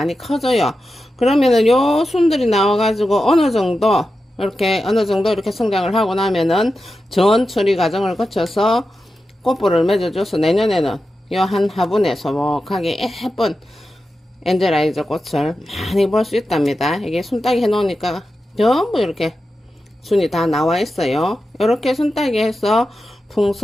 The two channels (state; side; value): normal; both; correlation 0.91